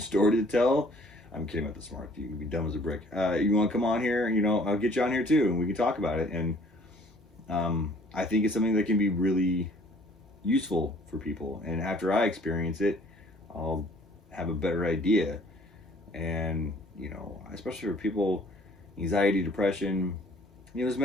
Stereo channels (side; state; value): both; normal; correlation 0.56